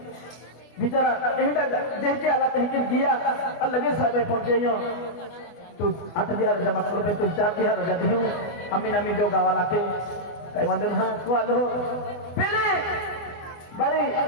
बिचारा एहडा देखे आला तहकिन दिया और लगे साहब पहुंचे तू 8,000 जमा कर पे तू 4,000 रजा दे अमीन अमीन जो गावा लाते काय वांदो ना को आलो पहले बारे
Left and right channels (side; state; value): right; late; 24 ms